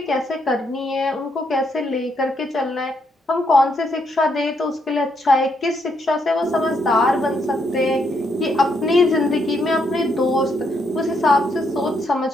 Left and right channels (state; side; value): normal; both; correlation 0.76